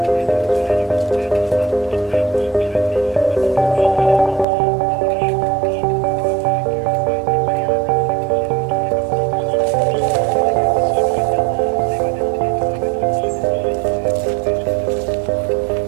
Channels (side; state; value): left; drops out; at 4.5 s